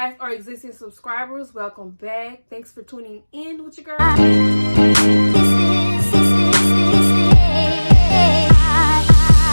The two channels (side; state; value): both; inverted; correlation -1.00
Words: are existing subscribers, welcome back. Thanks for tuning in with your girl.